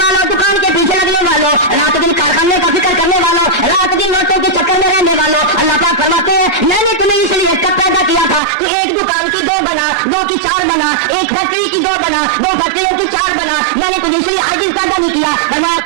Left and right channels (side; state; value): left; drops out; at 8.4 s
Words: دکان کے پیچھے لگنے والوں، رات دن کارخانے کا فکر کرنے والوں، رات دن نوٹوں کے چکر میں رہنے والوں، اللہ پاک فرماتے ہیں میں نے تمہیں اس لیے کب پیدا کیا تھا تو ایک دکان کی 2 بنا، 2 کی 4 بنا، ایک فیکٹری کی 2 بنا، 2 فیکٹریوں کی 4 بنا. میں نے تمہیں اس لیے عاجز پیدا نہیں کیا.